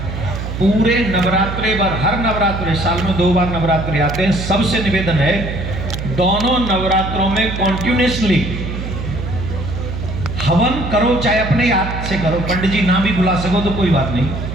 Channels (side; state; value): right; noise; hum, 6 dB below the sound